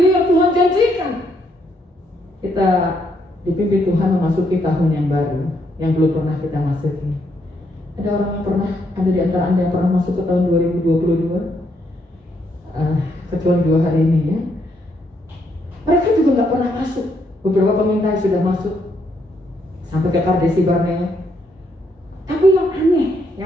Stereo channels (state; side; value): normal; both; correlation 0.75